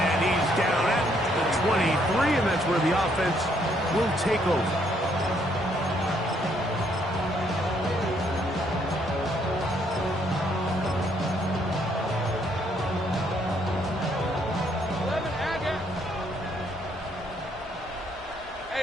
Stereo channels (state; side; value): normal; both; correlation 0.70